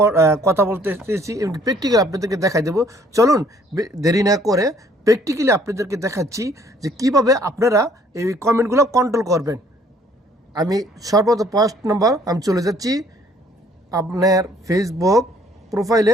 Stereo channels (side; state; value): both; normal; correlation 0.61